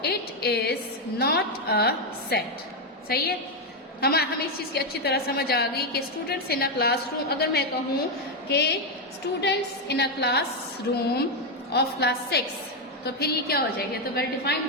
it is not a set. सही है, हमें इस चीज़ की अच्छी तरह समझ आ गई कि स्टूडेंट्स इन अ क्लासरूम, अगर मैं कहूँ कि students in a classroom of class 6, तो फिर ये क्या हो जाएगा? तो वेल डिफाइंड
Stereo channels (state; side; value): normal; both; correlation 0.04